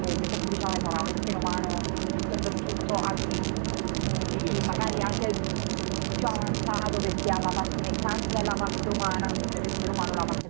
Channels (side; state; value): left; silent; 59 dB below the other